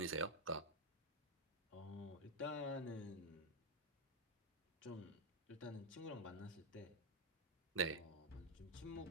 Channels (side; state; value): both; normal; correlation 0.00